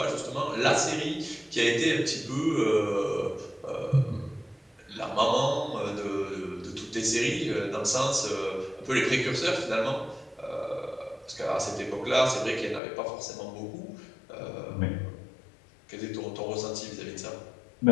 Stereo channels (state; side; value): drops out; right; at 12.8 s